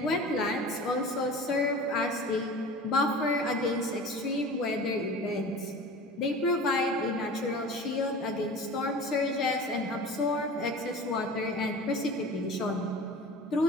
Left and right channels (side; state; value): both; normal; correlation 0.37